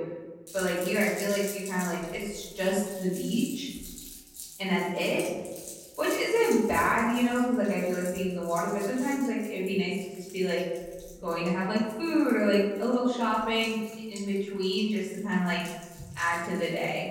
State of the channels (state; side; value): identical; both; correlation 1.00